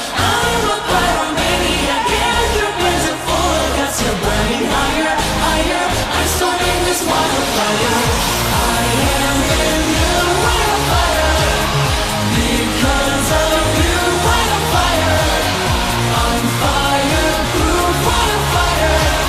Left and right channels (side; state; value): both; identical; correlation 1.00